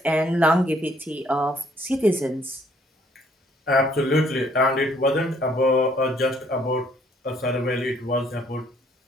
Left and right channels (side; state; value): both; normal; correlation 0.64